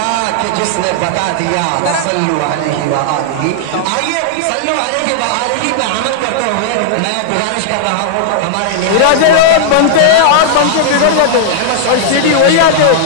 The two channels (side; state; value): both; different; correlation -0.01